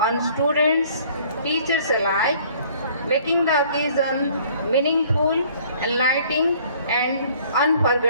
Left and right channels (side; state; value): both; inverted; correlation -0.56